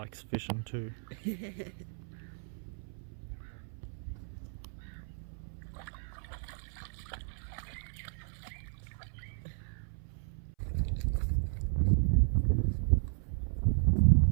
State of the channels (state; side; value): silent; left; 55 dB below the other